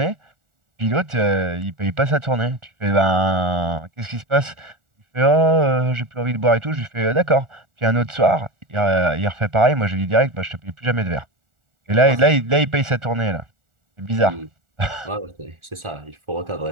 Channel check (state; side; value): late; left; 1.4 ms